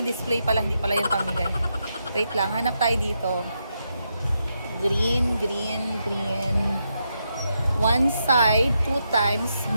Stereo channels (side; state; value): both; inverted; correlation -0.83